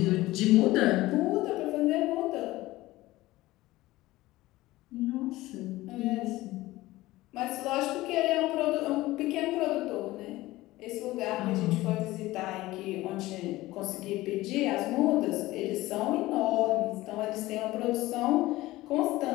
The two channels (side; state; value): right; quieter; 18.0 dB